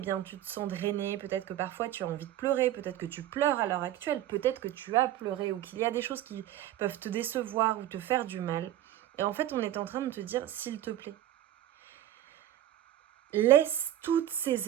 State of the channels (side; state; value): left; quieter; 12.8 dB